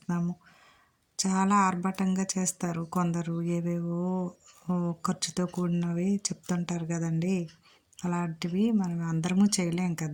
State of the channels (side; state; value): both; identical; correlation 1.00